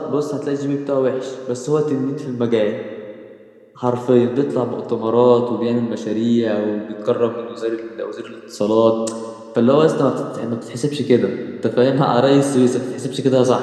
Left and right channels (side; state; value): both; identical; correlation 1.00